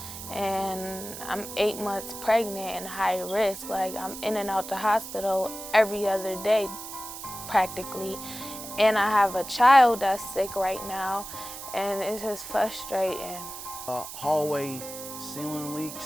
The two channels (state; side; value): noise; right; hiss, 10 dB below the sound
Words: And I'm 8 months pregnant and high risk. Like, I'm in and out the hospital every other day, practically. And I have a child that's sick right now, and it's just frustrating. Hallway ceiling